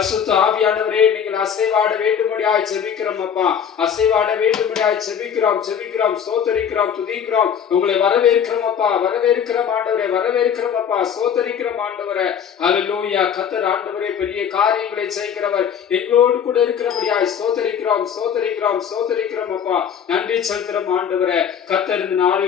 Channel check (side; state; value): right; quieter; 8.0 dB